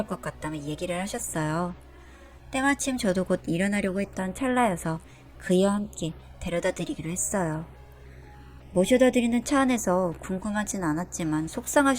것 같다며 얘기를 하셨어요. 때마침 저도 곧 일어나려고 했던 찰나여서 그이와 함께 데려다 드리기로 했어요. 모셔다 드리는 차 안에서 궁금하진 않았지만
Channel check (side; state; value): both; identical; correlation 1.00